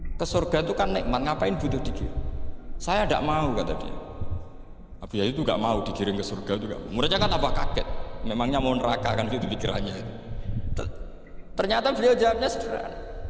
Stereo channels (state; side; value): identical; both; correlation 1.00